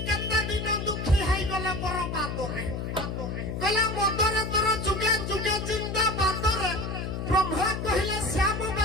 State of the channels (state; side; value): noise; left; hum, 4 dB below the sound